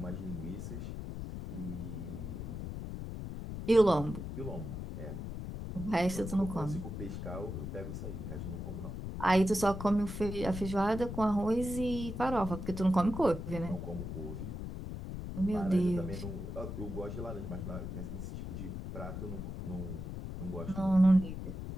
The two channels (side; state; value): left; noise; rumble, 6 dB below the sound